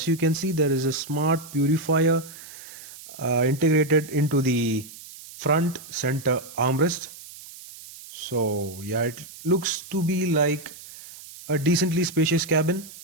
you can see, there is a smart purifier integrated into the front center armrest. So yeah, it looks to be like a decently spacious cabin.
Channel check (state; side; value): noise; right; hiss, 16 dB below the sound